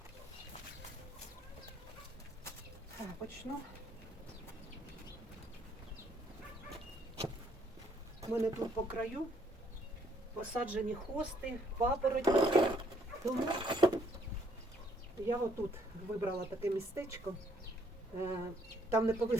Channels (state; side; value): normal; both; correlation 0.67